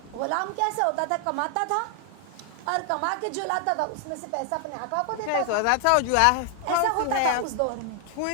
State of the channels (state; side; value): different; both; correlation 0.00